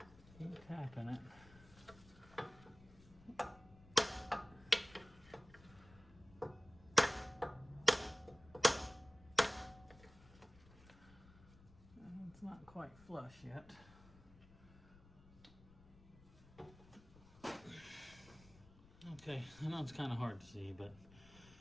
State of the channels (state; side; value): noise; left; rumble, 22 dB below the sound